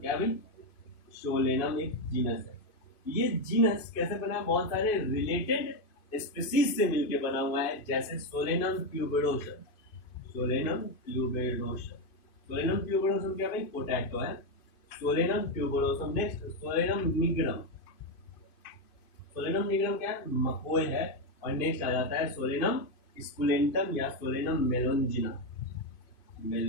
क्या भाई, सोलेनम एक जीनस है। ये जीनस कैसे बना है, बहुत सारे रिलेटेड स्पीसीज से मिलकर बना हुआ है, जैसे Solanum tuberosum, Solanum tuberosum, Solanum tuberosum क्या भाई, पोटैटो है, Solanum tuberosum. Next Solanum nigrum, Solanum nigrum क्या है, मकोय है। और नेक्स्ट आ जाता है सोलेनम स्कुलेंटम या सोलेनम मेलोंजिना,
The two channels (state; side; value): late; right; 2.5 ms